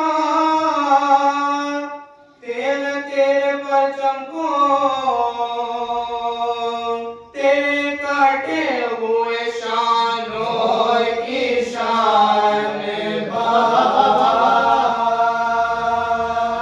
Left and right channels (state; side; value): identical; both; correlation 1.00